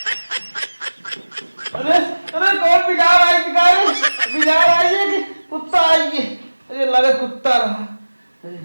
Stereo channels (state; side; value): inverted; both; correlation -1.00